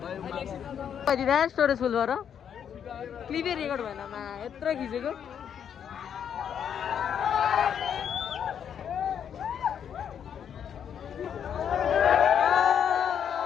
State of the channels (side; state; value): right; quieter; 8.4 dB